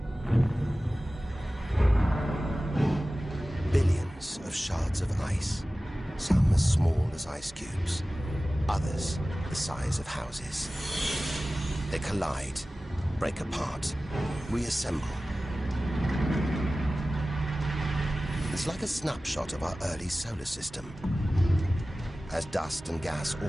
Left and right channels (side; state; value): both; normal; correlation 0.96